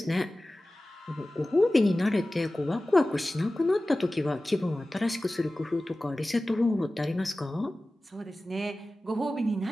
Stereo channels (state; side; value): normal; both; correlation 0.96